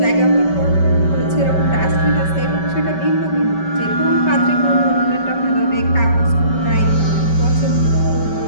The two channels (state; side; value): late; right; 5.2 ms